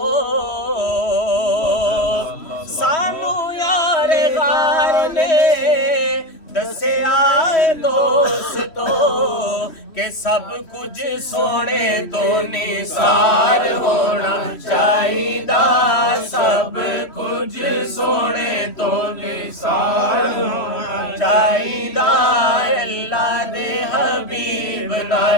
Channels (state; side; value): late; right; 3.1 ms